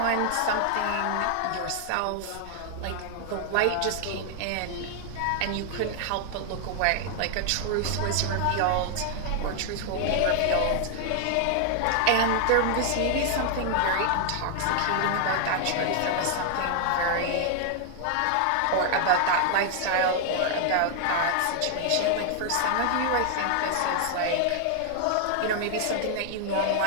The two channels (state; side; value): different; both; correlation 0.00